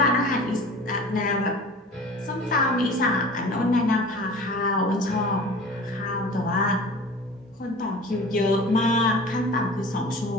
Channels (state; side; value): normal; both; correlation 0.40